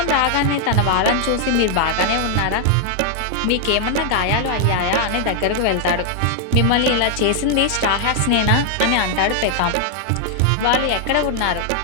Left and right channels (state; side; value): different; both; correlation 0.00